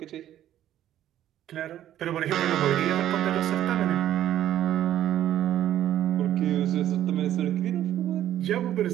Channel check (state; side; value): quieter; left; 12.0 dB